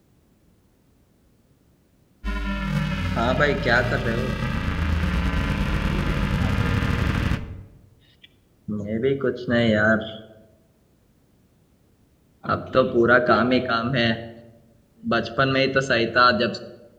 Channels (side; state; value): both; identical; correlation 1.00